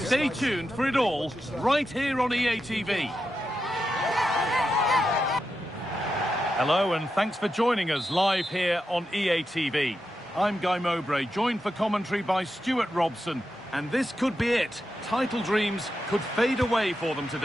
tuned for it all, right here on EA TV. Hello and thanks for joining us live here on EA TV. I'm Guy Mowbray, joined for commentary by Stuart Robson. And this could be it. Title dreams could fade away for them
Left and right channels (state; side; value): normal; both; correlation 0.88